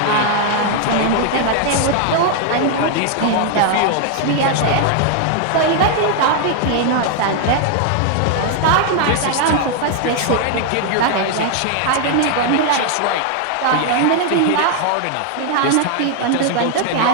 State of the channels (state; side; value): different; both; correlation 0.00